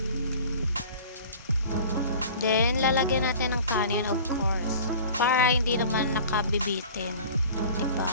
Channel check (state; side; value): inverted; both; correlation -0.42